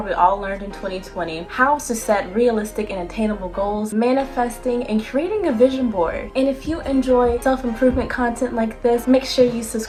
all learned in 2020, how to set realistic and attainable goals, manifesting, and creating a vision board. And if you enjoy self-improvement content like this, make sure you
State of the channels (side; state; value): both; identical; correlation 1.00